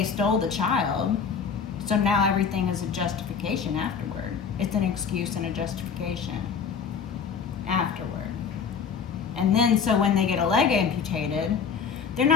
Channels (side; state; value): right; quieter; 6.4 dB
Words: stole the child. So now everything is a justification afterward. It's an excuse and a justification afterward. And then so when they get a leg amputated, they're